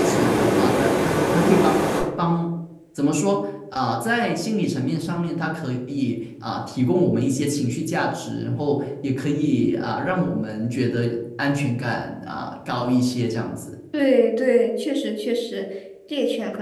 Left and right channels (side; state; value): both; identical; correlation 1.00